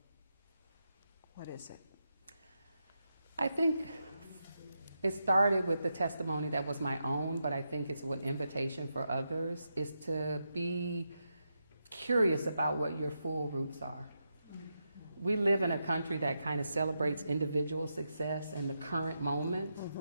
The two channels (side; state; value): both; inverted; correlation -0.85